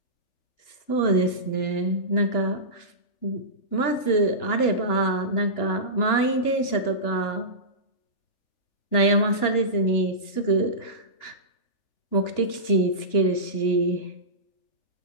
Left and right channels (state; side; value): late; right; 2.9 ms